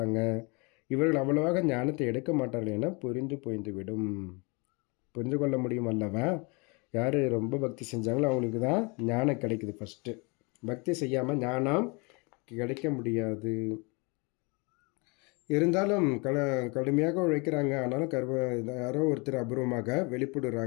இவர்கள் அவ்வளவாக ஞானத்தை எடுக்க மாட்டார்கள் என புரிந்துவிடும். புரிந்து கொள்ள முடியும் அல்லவா? யார் ரொம்ப பக்தி செஞ்சாங்களோ அவங்களுக்கு தான் ஞானம் கிடைக்குது. ஃபஸ்ட்டு பக்தி செய்யாமல் ஞானம் கிடைக்க முடியாது. இருந்தாலும் கடுமையாக உழைக்கிறாங்க. ஆனாலும் யாரோ ஒருத்தர் அபூர்வமாக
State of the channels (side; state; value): right; quieter; 30.1 dB